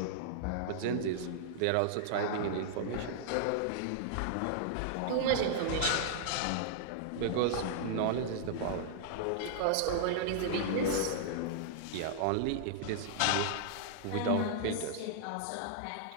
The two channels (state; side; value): different; both; correlation -0.01